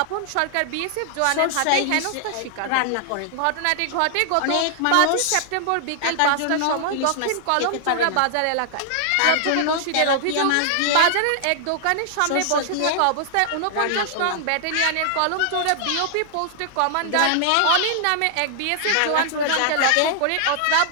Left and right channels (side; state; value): both; different; correlation -0.01